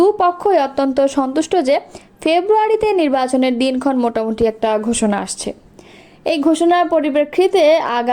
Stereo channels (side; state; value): both; identical; correlation 1.00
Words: অত্যন্ত সন্তুষ্ট যে ফেব্রুয়ারিতে নির্বাচনের দিনক্ষণ মোটামুটি একটা ঘোষণা আসছে। এই ঘোষণার পরিপ্রেক্ষিতে